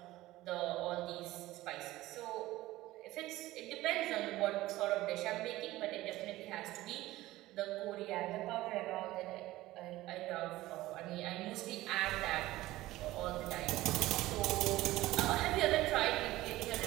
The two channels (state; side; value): quieter; left; 17.1 dB